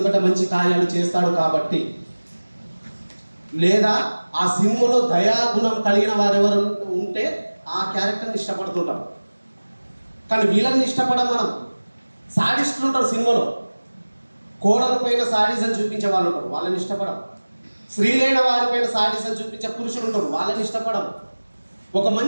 మంచి కార్యాలు చేస్తాడు కాబట్టి. లేదా ఆ సినిమాలో దయాగుణం కలిగిన వారెవరు ఉంటే ఆ క్యారెక్టర్ని ఇష్టపడుతుంటాం. కానీ వీళ్ళని ఇష్టపడం మనం. సాడిస్టులు ఉంటారు సినిమాలో, కోడల పైన సాడిజం చూపించే వాళ్ళు ఉంటారు, వాళ్ళని ఇష్టపడం. స్త్రీలైన వారిపైన సాడిజం చూపించే పురుషులు ఉంటారు, వాళ్ళని ఇష్టపడం. ఒక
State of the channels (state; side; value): inverted; both; correlation -1.00